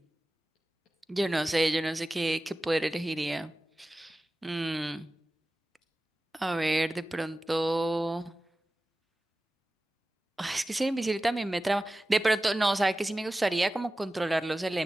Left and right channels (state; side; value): normal; both; correlation 0.96